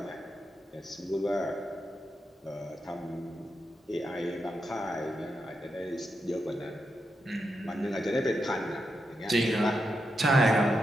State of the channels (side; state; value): both; normal; correlation 0.85